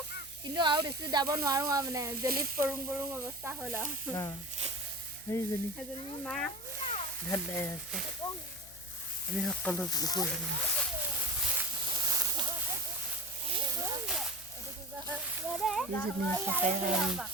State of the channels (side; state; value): left; noise; hum, 22 dB below the sound